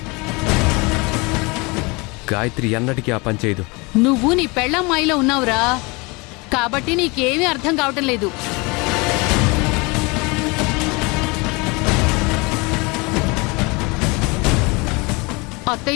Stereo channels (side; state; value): right; quieter; 26.9 dB